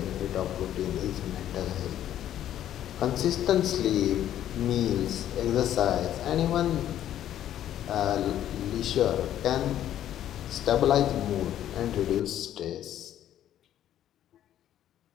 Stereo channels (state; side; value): quieter; right; 11.5 dB